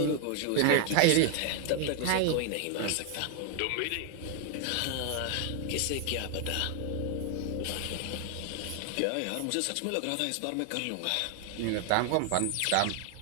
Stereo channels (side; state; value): both; different; correlation 0.00